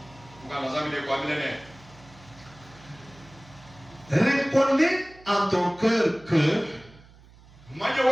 Reconnais en ton cœur que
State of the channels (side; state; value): right; noise; hum, 24 dB below the sound